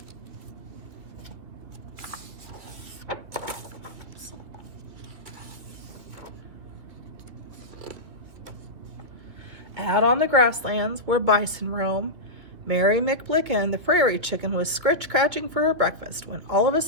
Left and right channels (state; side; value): late; left; 2.6 ms